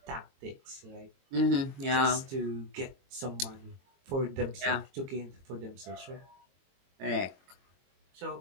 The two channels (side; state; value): left; late; 22 ms